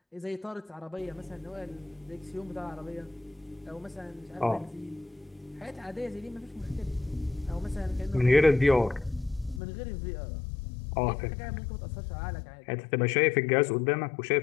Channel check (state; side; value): drops out; right; at 9.6 s